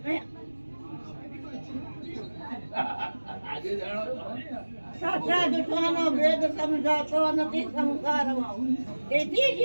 સાચા જૂઠાનો ભેદ સમજાતો નથી સંસારમાં. તેથી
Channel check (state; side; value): inverted; both; correlation -1.00